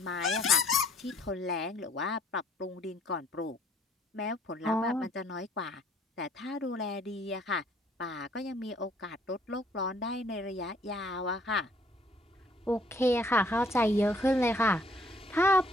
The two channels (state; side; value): normal; both; correlation 0.63